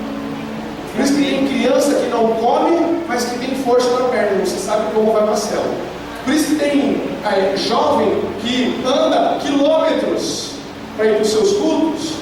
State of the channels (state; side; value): identical; both; correlation 1.00